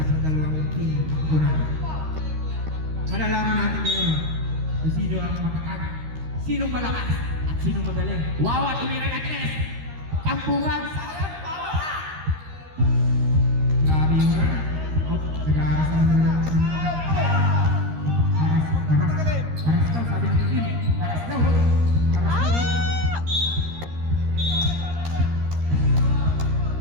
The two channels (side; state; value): left; late; 13 ms